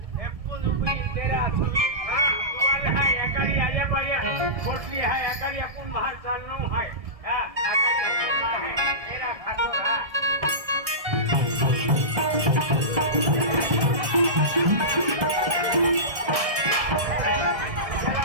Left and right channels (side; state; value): left; late; 1.6 ms